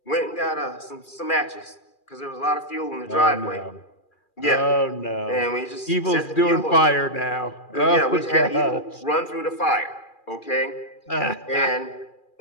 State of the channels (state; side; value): late; right; 2.4 ms